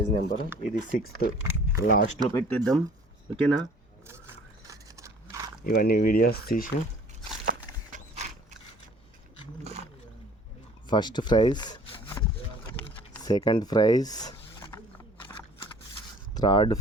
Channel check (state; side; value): normal; both; correlation 0.51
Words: నెంబర్ ఇది 6th. లాస్ట్లో పెట్టేద్దాం, ఓకేనా? ఇవన్నీ వీడియోస్ తీసి first prize, second prize, third